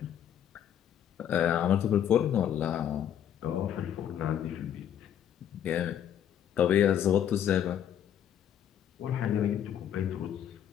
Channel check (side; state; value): right; quieter; 9.8 dB